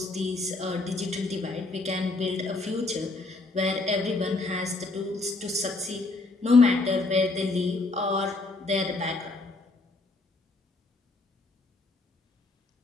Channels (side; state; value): right; quieter; 3.3 dB